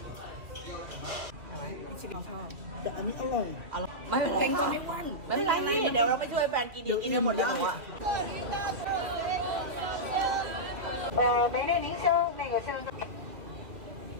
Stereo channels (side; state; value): left; late; 2.6 ms